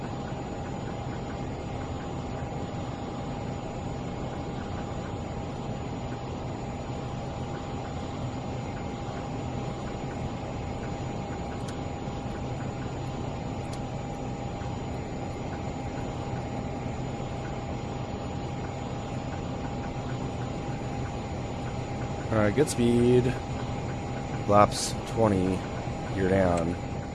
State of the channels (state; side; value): identical; both; correlation 1.00